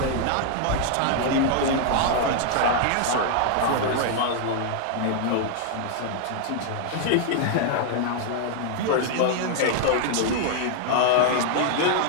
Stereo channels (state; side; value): different; both; correlation 0.00